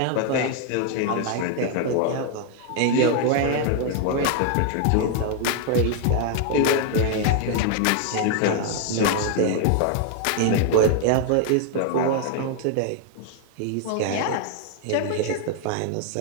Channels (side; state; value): both; different; correlation 0.00